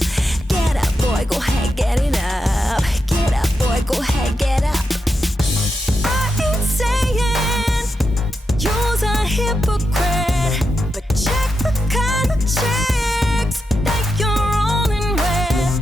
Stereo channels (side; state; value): both; normal; correlation 0.86